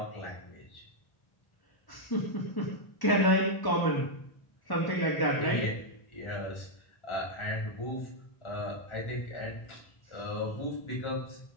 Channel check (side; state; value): right; late; 1.1 ms